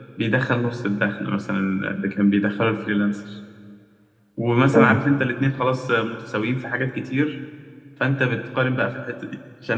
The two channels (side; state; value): both; identical; correlation 1.00